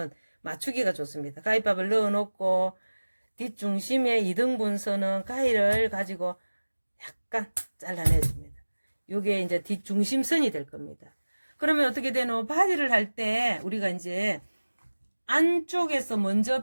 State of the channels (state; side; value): inverted; both; correlation -1.00